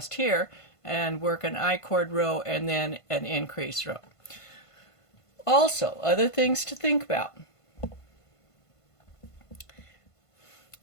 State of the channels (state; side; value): late; right; 1.5 ms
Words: here, and work an I-cord row and then an increase row. Also, other things to think about.